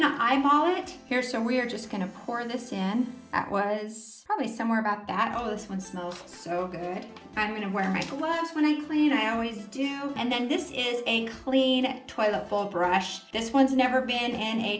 eyeball it here, so we are just gonna pour this in. That was probably somewhere about that. Oh, this one smells so good. I'm gonna wear my gloves when I clean, I always do. And then this is a clean toilet bowl brush. This one's never been in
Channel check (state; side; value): identical; both; correlation 1.00